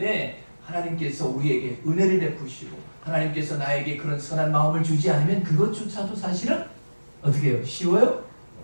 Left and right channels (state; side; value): inverted; both; correlation -1.00